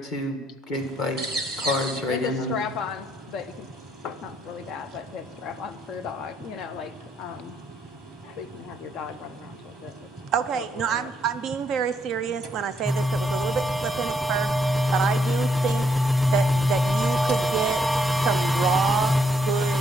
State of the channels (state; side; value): normal; both; correlation 0.73